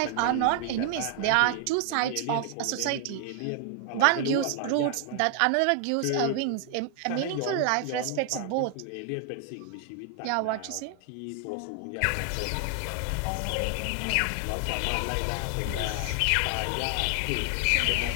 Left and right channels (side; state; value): both; different; correlation 0.00